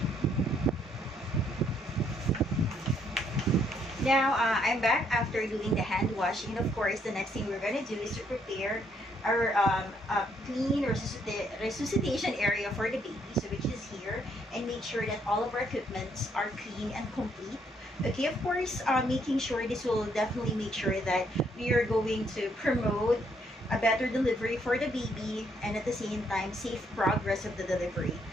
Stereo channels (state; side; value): normal; both; correlation 0.70